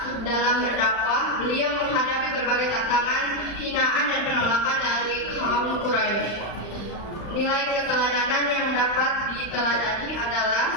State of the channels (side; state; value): right; late; 35 ms